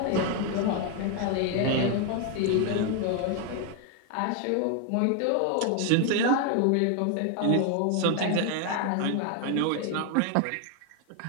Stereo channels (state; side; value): different; both; correlation 0.01